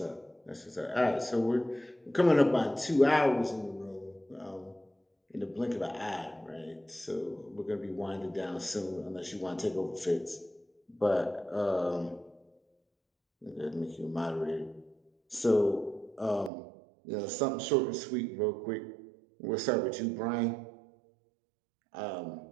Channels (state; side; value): drops out; left; at 16.5 s